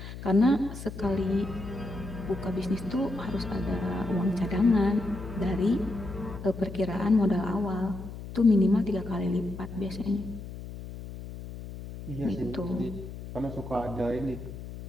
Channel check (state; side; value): noise; left; hum, 11 dB below the sound